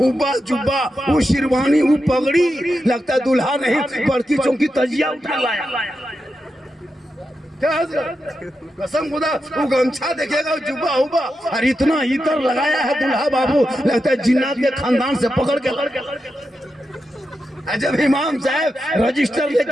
जुब्बा, वो शेरवानी, वो पगड़ी, लगता दूल्हा नहीं बड़की चौकी तजिया उठा लाया। क्या कसम खुदा, वो गमछा देखेगा, जुब्बा हुब्बा, और इतना इतर लगाया है दूल्हा बाबू, लगता है जिन्नात के खानदान से पकड़ के। जब इमाम साहब रजिस्टर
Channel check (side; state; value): both; normal; correlation 0.88